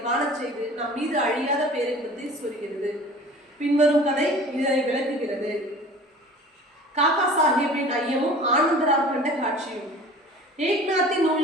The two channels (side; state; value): both; normal; correlation 0.43